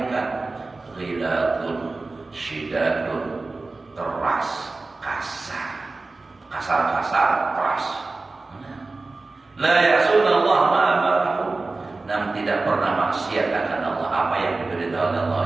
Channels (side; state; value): left; quieter; 3.5 dB